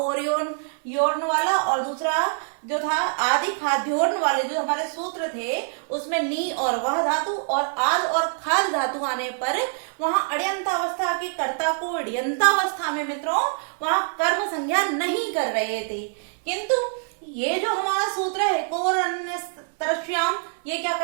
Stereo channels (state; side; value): silent; left; digital silence